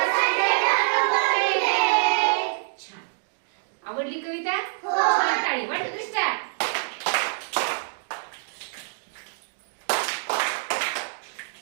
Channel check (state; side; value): silent; left; digital silence